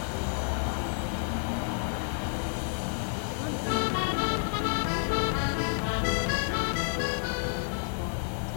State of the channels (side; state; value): right; silent; digital silence